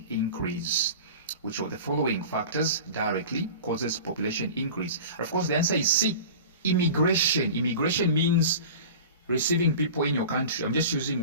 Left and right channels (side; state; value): both; inverted; correlation -0.37